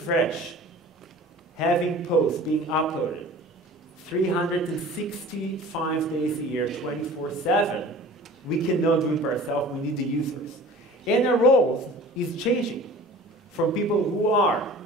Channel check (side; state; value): both; normal; correlation 0.43